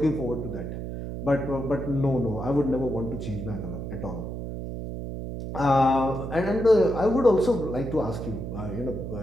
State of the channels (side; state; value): right; noise; hum, 6 dB below the sound